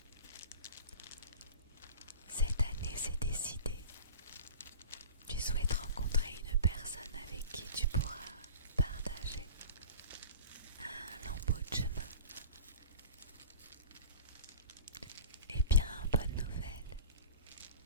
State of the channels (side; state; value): both; inverted; correlation -0.39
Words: cette année c'est décidé. Tu souhaites rencontrer une personne avec qui tu pourras partager un lambeau de chemin. Eh bien, bonne nouvelle.